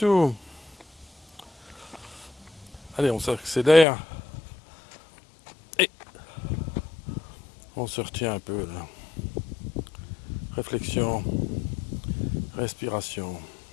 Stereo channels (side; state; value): right; drops out; at 3.9 s